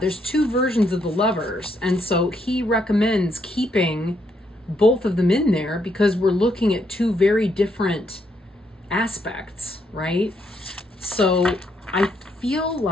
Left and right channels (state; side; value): normal; both; correlation 0.75